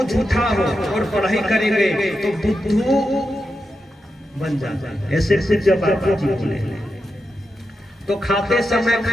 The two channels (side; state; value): both; normal; correlation 0.88